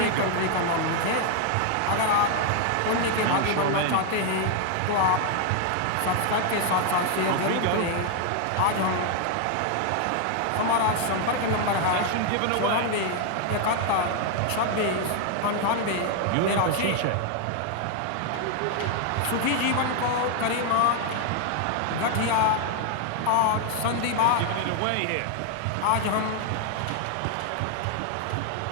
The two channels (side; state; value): both; different; correlation 0.00